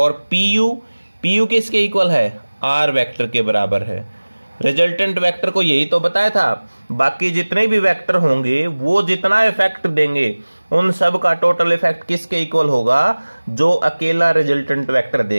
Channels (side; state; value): both; inverted; correlation -1.00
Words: PU किसके इक्वल है, R वेक्टर के बराबर है। रिजल्टेंट वेक्टर को यही तो बताया था, बाकी जितने भी वेक्टर होंगे वो जितना इफेक्ट देंगे उन सब का टोटल इफेक्ट किसके इक्वल होगा, जो अकेला रिजल्टेंट वेक्टर